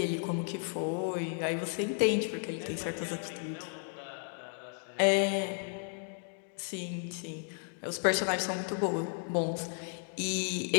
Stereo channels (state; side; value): silent; right; 55 dB below the other